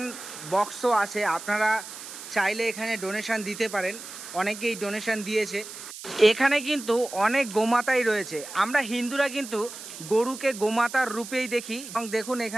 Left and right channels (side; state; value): right; noise; hiss, 12 dB below the sound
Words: বক্সও আছে, আপনারা চাইলে এখানে ডোনেশন দিতে পারেন। অনেকেই ডোনেশন দিয়েছে। এখানে কিন্তু অনেক গোমাতাই রয়েছে। আমরা হিন্দুরা কিন্তু গরুকে গোমাতার রূপেই দেখি এবং দেখুন